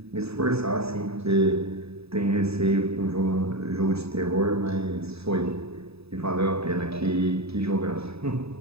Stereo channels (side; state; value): left; late; 0.78 ms